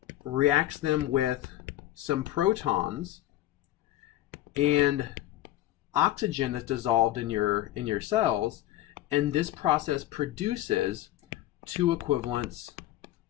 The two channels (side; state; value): right; quieter; 14.7 dB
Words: reacts them with some protons and oxygen that's dissolved in your cells, and this process produces 2 equivalents